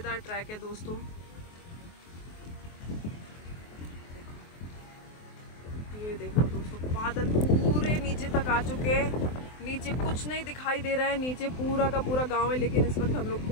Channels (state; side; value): late; right; 23 ms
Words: ट्रैक है दोस्तों। ये देखो दोस्तों, बादल पूरे नीचे तक आ चुके हैं। नीचे कुछ नहीं दिखाई दे रहा है, नीचे पूरा का पूरा गांव है, लेकिन इस वक्त हम लोग